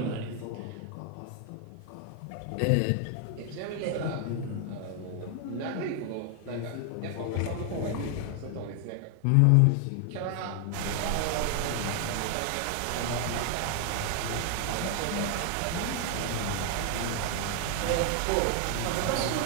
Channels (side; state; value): both; different; correlation 0.00